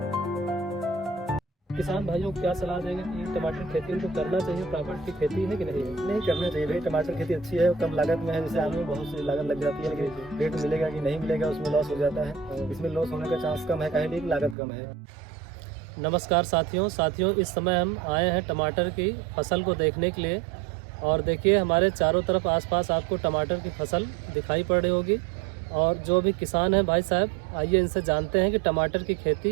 किसान भाइयों को क्या सलाह देंगे कि टमाटर खेती उनको करना चाहिए? प्राकृतिक खेती है कि नहीं है? नहीं करना चाहिए भाई, टमाटर खेती अच्छी है, कम लागत में है। जैसे आलू में बहुत सी लागत लग जाती है, लेकिन रेट मिलेगा कि नहीं मिलेगा उसमें लॉस हो जाता है। इसमें लॉस होने का चांस कम है, काहे लिए कि लागत कम है। नमस्कार साथियों, इस समय हम आए हैं टमाटर की फसल को देखने के लिए। और देखिए हमारे चारों तरफ आसपास आपको टमाटर की फसल दिखाई पड़ रही होगी। और जो भी किसान हैं भाई साहब, आइए इनसे जानते हैं कि टमाटर की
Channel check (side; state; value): left; drops out; at 14.6 s